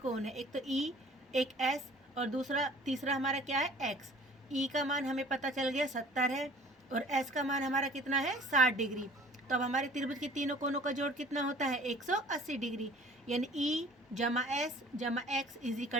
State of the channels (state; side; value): normal; both; correlation 0.50